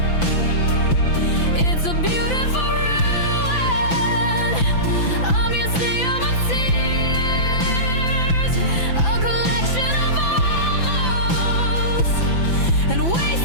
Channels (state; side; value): late; right; 5.9 ms